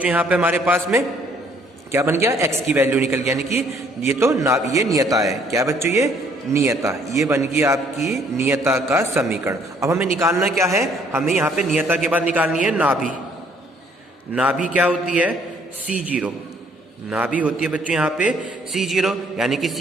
यहाँ पे हमारे पास में क्या बन गया, x की वैल्यू निकल गया, यानी कि ये तो ये नियता है। क्या बच्चों, ये नियता, ये बन गई आपकी नियता का समीकरण। अब हमें निकालना क्या है, हमें यहाँ पे नियता के बाद निकालनी है नाभि। नाभि क्या होती है, c0, नाभि होती है बच्चों यहाँ पे c0, यानी कि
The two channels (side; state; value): both; normal; correlation 0.63